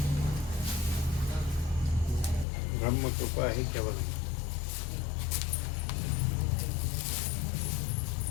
બ્રહ્મ કૃપા હે કેવલમ.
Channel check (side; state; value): right; drops out; at 2.5 s